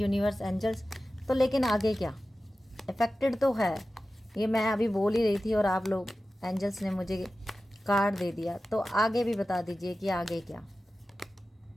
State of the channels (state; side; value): normal; both; correlation 0.95